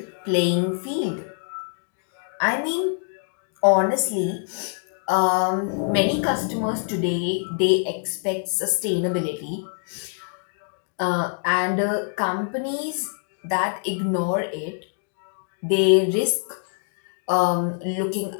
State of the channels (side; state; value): right; silent; 55 dB below the other